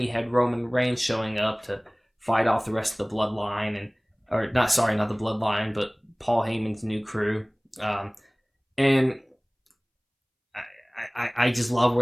you had Roman Reigns showing up to fight off the rest of the Bloodline, not the Bloodline, but Paul Heyman's new crew. And I just love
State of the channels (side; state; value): both; identical; correlation 1.00